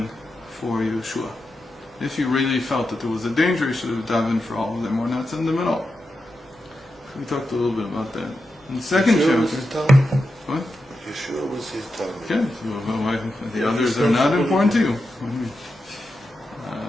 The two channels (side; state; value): both; normal; correlation 0.88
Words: for Yeshua? If he really felt that there was a danger, he should have davened for all of them or not send them at all. We talked a little bit about that. In the second chapter, what? Yeshua was his Talmud. Okay, so the others are not important to you.